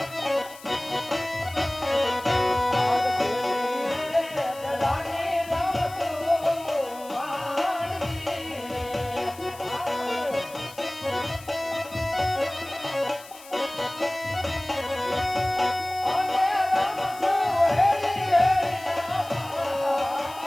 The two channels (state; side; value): noise; left; hiss, 19 dB below the sound